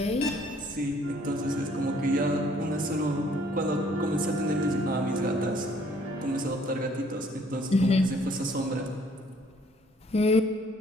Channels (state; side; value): normal; both; correlation 0.61